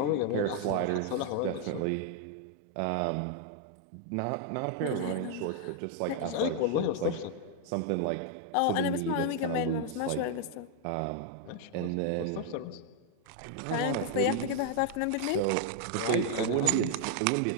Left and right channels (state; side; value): different; both; correlation 0.00